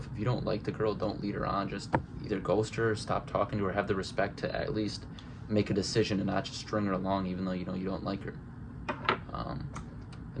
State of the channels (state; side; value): identical; both; correlation 1.00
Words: If you don't like the girl, don't lead her on. Just either ghost her or stop talking to her. Have the respect to at least make a decision and not just string her along even though you know you don't like her.